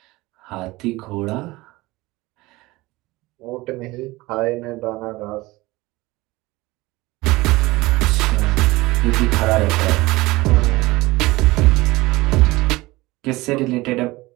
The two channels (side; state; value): left; quieter; 20.4 dB